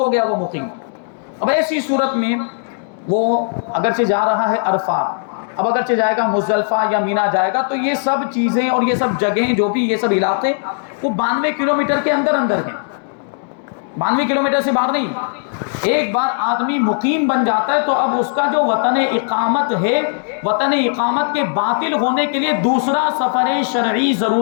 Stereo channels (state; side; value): silent; right; digital silence